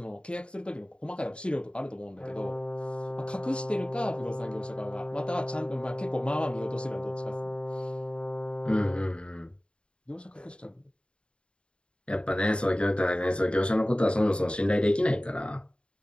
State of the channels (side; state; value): right; late; 0.055 ms